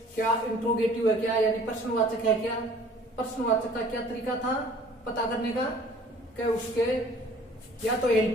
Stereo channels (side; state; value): both; normal; correlation 0.52